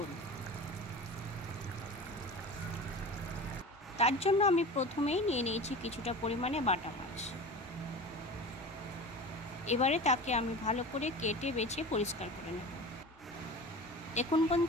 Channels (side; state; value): both; normal; correlation 0.34